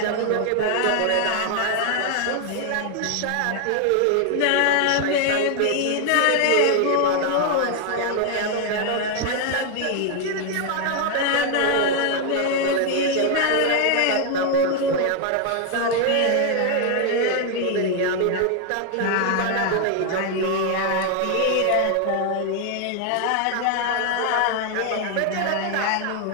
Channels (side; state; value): both; different; correlation 0.01